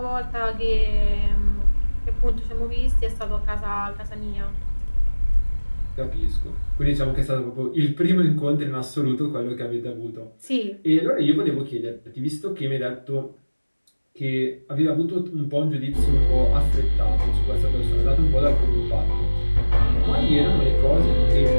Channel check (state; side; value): inverted; both; correlation -1.00